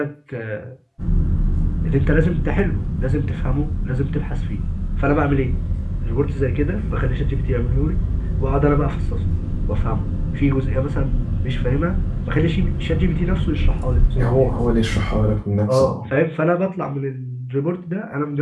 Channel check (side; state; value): both; identical; correlation 1.00